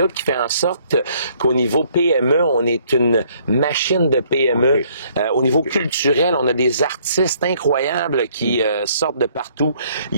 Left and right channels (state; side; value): inverted; both; correlation -0.64